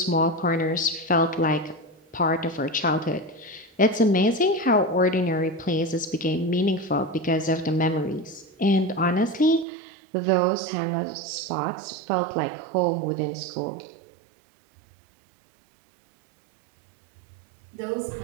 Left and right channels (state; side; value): drops out; left; at 9.7 s